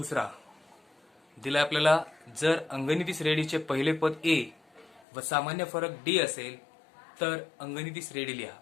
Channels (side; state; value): right; drops out; at 5.0 s